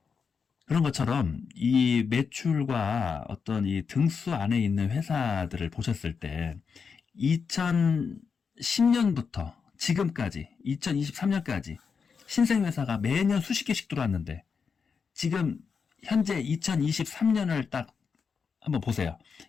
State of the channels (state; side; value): quieter; right; 5.8 dB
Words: 그런 것처럼 이 매출과 어떤 이 등수 안에 있는 회사들을 보셨을 때 2010년부터 지금까지 2023년까지 신생회사가 매년 수십 개씩 들어왔는데 지금 현재 2023년을 딱 한번 보세요.